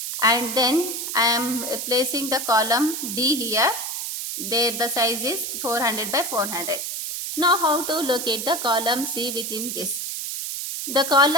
And then I am placing the column D here. There the size is 400 by 400. Now how to locate the column C within this? The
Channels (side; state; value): right; noise; hiss, 4 dB below the sound